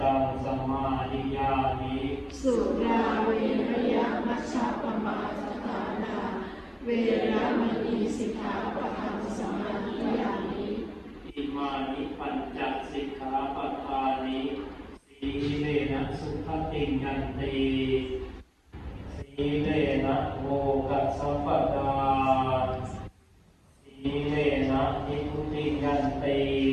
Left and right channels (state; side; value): identical; both; correlation 1.00